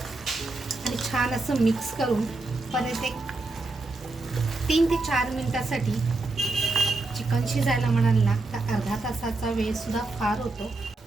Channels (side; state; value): left; quieter; 3.2 dB